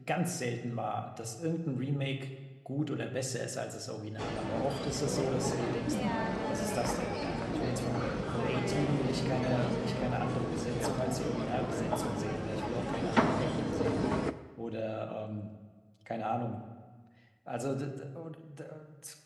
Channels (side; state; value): both; identical; correlation 1.00